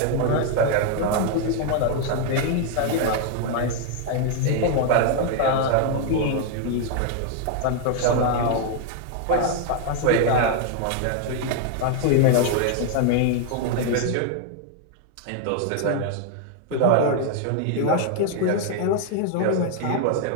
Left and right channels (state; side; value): different; both; correlation 0.00